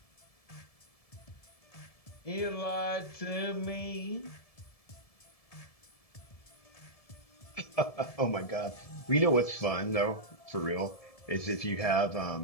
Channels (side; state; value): right; late; 1.7 ms